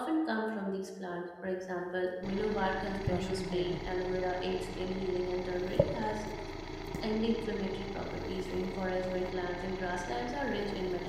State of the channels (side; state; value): both; identical; correlation 1.00